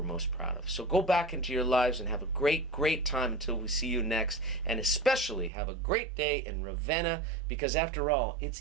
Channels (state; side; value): drops out; left; at 5.5 s